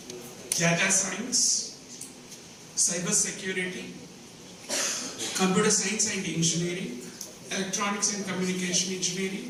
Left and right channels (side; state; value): both; identical; correlation 1.00